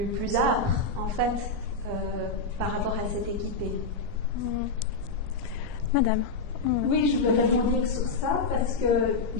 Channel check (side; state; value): right; quieter; 3.9 dB